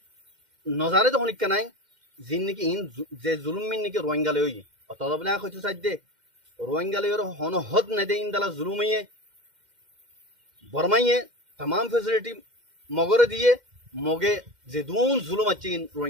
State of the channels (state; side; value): late; left; 2.1 ms